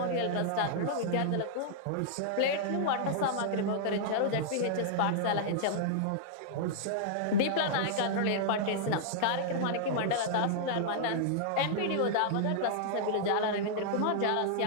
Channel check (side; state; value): both; different; correlation -0.01